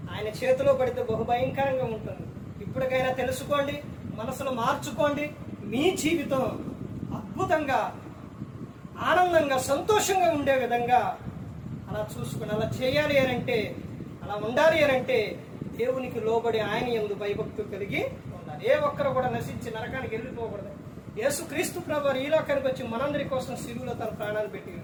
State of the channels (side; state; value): both; identical; correlation 1.00